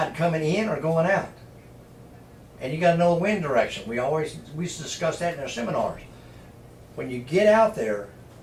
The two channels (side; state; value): both; identical; correlation 1.00